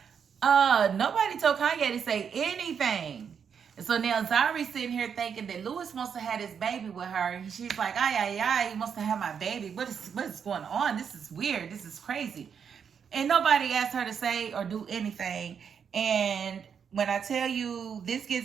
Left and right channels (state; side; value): quieter; left; 7.2 dB